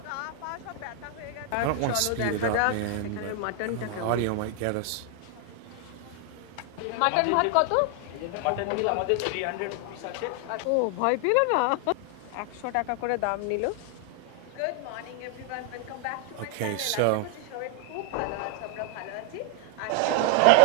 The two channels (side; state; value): both; different; correlation 0.00